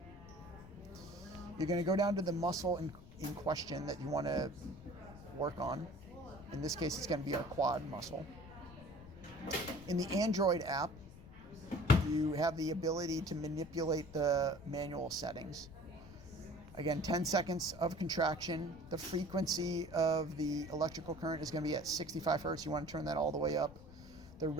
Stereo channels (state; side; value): noise; left; rumble, 17 dB below the sound